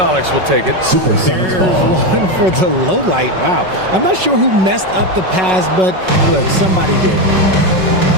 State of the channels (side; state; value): left; late; 5.4 ms